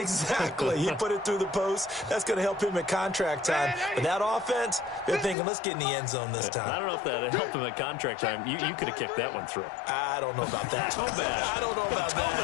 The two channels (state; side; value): drops out; right; at 5.4 s